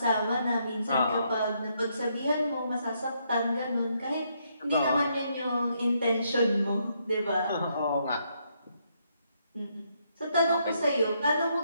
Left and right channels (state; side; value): inverted; both; correlation -0.75